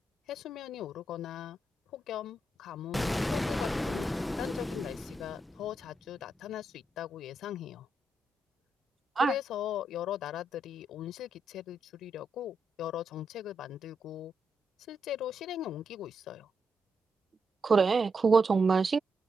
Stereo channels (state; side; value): normal; both; correlation 0.82